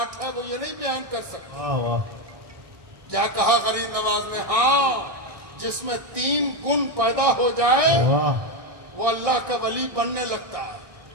है, वो ये नहीं बयान कर सकते। वाह वाह, क्या कहा गरीब नवाज ने? हाँ, जिसमें 3 गुण पैदा हो जाए वाह, वो अल्लाह का वली बनने लगता है।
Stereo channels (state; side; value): late; left; 1.6 ms